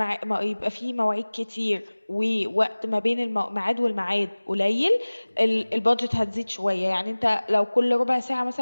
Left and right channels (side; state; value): both; inverted; correlation -1.00